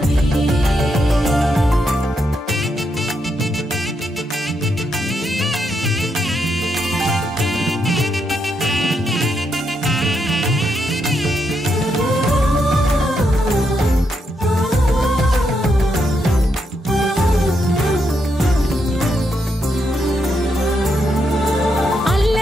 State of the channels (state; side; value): normal; both; correlation 0.80